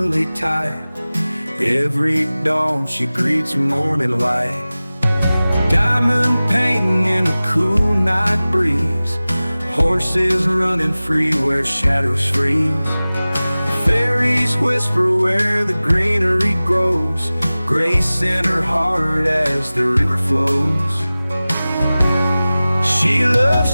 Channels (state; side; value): inverted; both; correlation -0.98